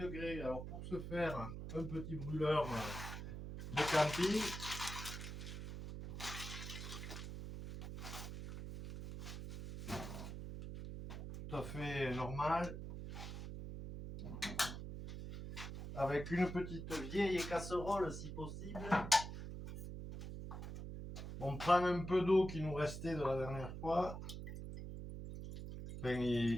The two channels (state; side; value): noise; right; hum, 7 dB below the sound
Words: Alors pour ce faire, un petit brûleur de camping. Tout à fait normal. Avec une petite vieille casserole si possible. On prend un peu d'eau qui nous restait de la dernière fois. Enfin,